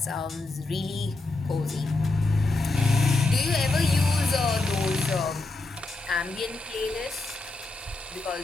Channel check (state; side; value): quieter; right; 3.2 dB